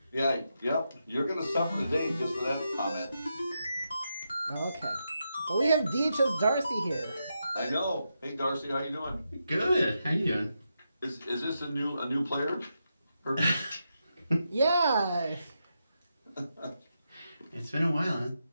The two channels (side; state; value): both; inverted; correlation -0.85